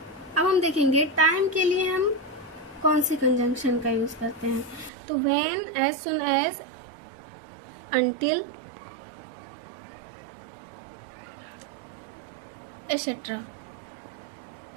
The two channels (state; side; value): drops out; left; at 4.9 s